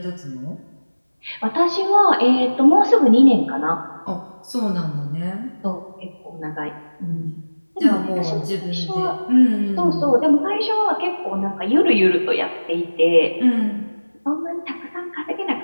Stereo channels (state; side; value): inverted; both; correlation -1.00